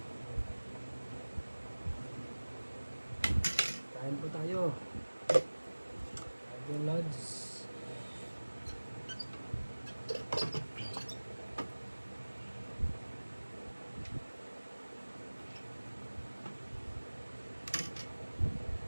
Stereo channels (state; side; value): inverted; both; correlation -1.00